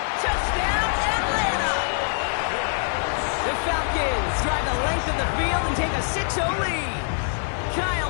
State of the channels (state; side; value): silent; right; digital silence